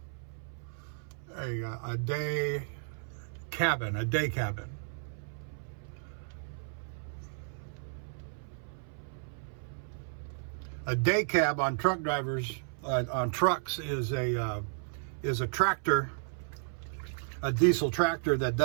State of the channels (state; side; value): silent; left; 55 dB below the other